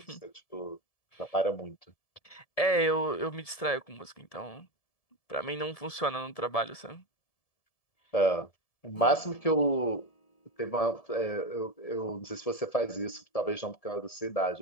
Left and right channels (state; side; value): late; right; 1.7 ms